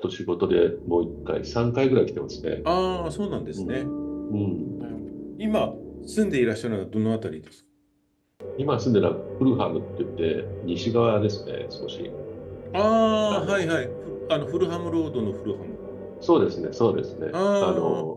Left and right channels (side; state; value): both; identical; correlation 1.00